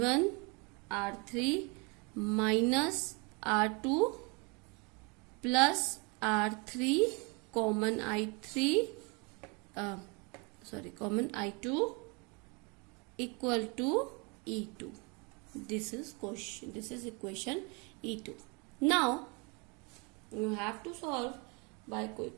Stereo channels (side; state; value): left; quieter; 30.9 dB